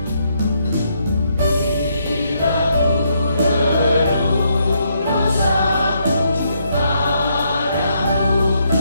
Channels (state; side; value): inverted; both; correlation -0.75